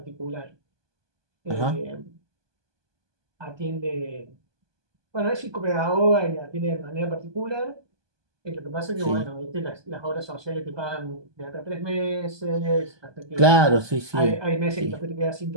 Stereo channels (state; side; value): late; left; 1.2 ms